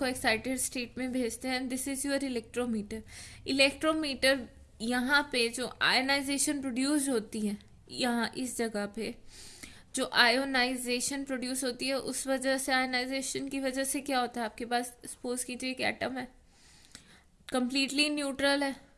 एक्साइटेड स्टेट में भेजते हैं। This is your electrometer. Electrometer यहाँ पे जो आयनाइजेशन प्रोड्यूस होती है, यहाँ इस जगह पे जो आयोनाइजेशन प्रोड्यूस होती है उस वजह से, आयोनाइजेशन की वजह से क्या होता है, आपके पास सपोज कीजिए एक एटम है कंप्लीटली न्यूट्रल है,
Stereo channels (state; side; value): identical; both; correlation 1.00